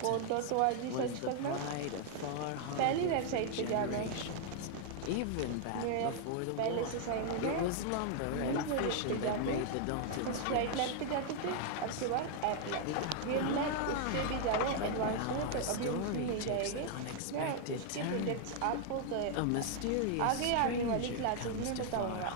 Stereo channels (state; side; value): different; both; correlation 0.00